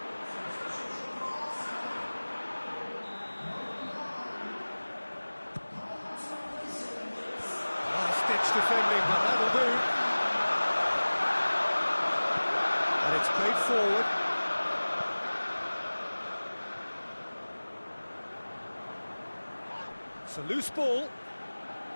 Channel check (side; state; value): both; inverted; correlation -1.00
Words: Defending, but that'll do. And it's played forward. It's a loose ball.